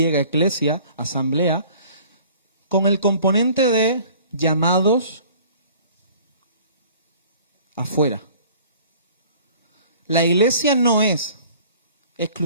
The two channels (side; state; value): both; inverted; correlation -0.50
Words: eclesia, asamblea, con el componente de llamados afuera. La iglesia no es